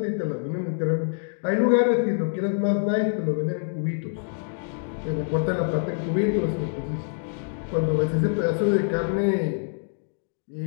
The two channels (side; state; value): right; silent; digital silence